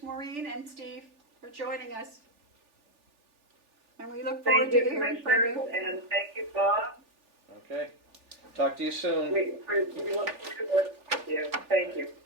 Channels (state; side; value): late; left; 3.4 ms